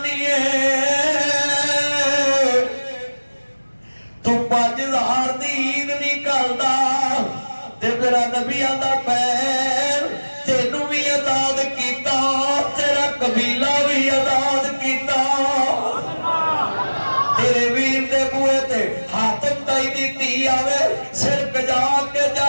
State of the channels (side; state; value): both; inverted; correlation -1.00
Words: है तू 5000 दी ईद नहीं करदा ते मेरा नबी आंदा भैन तेनू भी आजाद कीता तेरा कबीला भी आजाद कीता तेरे वीर दे बूहे ते हाथम ताई दी धी आवे सिर कजा के